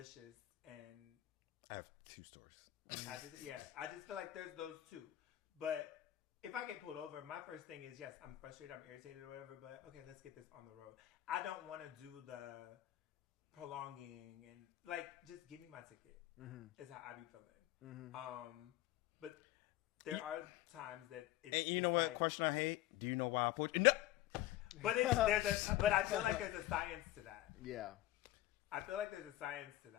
and I have 2 stories. I just feel like there's those two. But if I get pulled over, my first thing is, yes, I'm frustrated, I'm irritated or whatever, but okay, let's get this on the road. I don't want to do the prolonging and like, just give me my ticket is how I be feeling. But there are times that it's, and you know what, like, question I hate? Do you know why I pulled you? No. But I feel like there's a science to that. Yeah. I feel like there's a science to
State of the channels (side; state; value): right; quieter; 14.9 dB